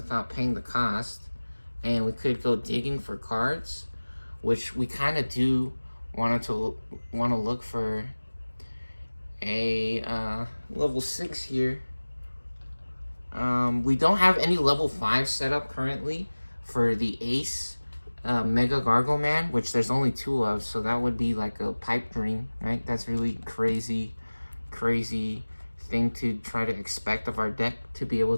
paying the cost. And we could go digging for cards, which we kind of do want to look for a level 6 here. We don't have any level 5 set up currently for the Ace Mega Gargo Man, which there's only 2 of, so that would be like a pipe dream, right? That's really crazy thing to try to expect of our deck to be able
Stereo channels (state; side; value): inverted; both; correlation -1.00